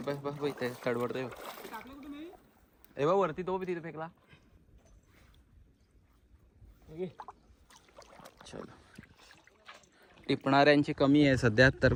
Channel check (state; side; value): identical; both; correlation 1.00